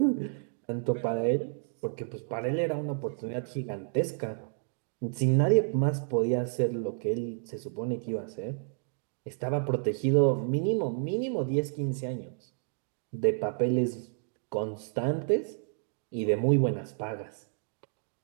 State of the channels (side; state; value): left; silent; digital silence